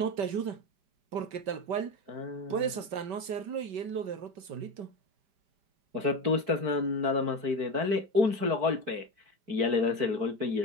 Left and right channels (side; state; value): left; late; 5.2 ms